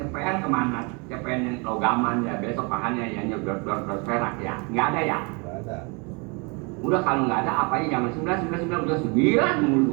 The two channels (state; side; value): quieter; left; 31.6 dB